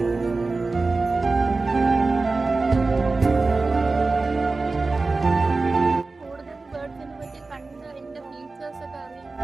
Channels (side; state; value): left; quieter; 3.7 dB